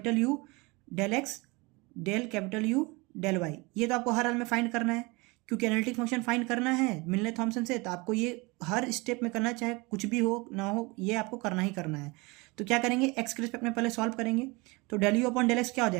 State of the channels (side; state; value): left; quieter; 25.7 dB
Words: u del x del capital u del y, ये तो आपको हर हाल में फाइंड करना है, क्योंकि एनालिटिक फंक्शन फाइंड करना है मिलने थॉमसन से, तो आपको ये हर स्टेप में करना, चाहे कुछ भी हो ना हो, ये आपको करना ही करना है। तो क्या करेंगे, एक्स के रिस्पेक्ट में पहले सॉल्व करेंगे, तो del you upon del x क्या हो